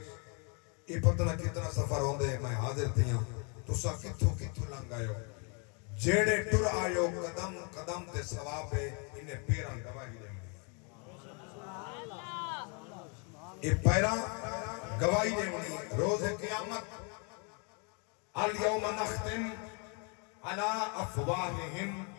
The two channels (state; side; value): quieter; right; 35.8 dB